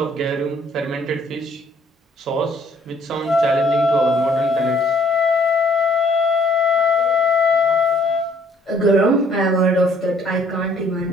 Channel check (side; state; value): both; normal; correlation 0.62